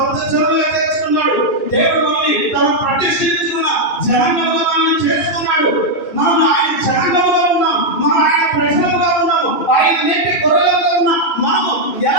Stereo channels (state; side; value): late; right; 1.7 ms